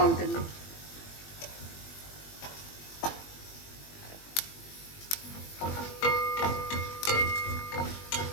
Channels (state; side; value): late; right; 21 ms